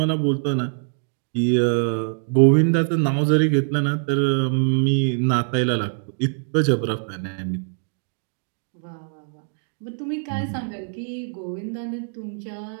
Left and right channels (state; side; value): silent; left; digital silence